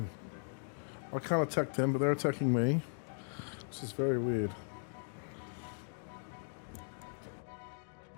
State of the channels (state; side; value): silent; right; digital silence